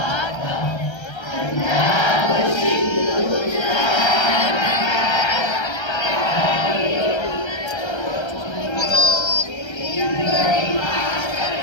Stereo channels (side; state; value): right; late; 1.3 ms